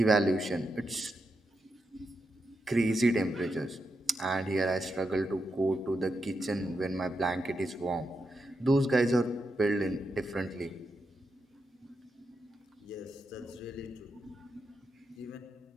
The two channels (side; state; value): both; normal; correlation 0.85